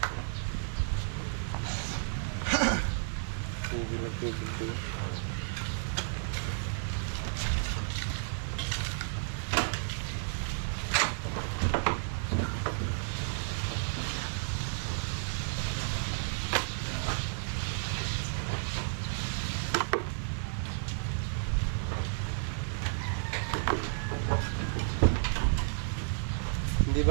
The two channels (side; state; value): left; silent; digital silence